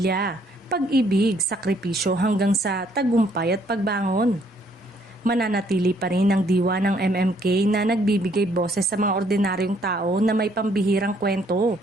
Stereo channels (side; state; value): both; normal; correlation 0.66